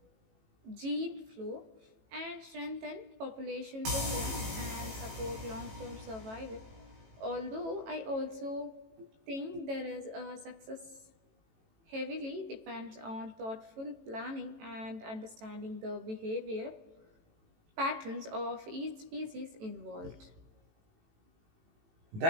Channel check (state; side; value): late; left; 18 ms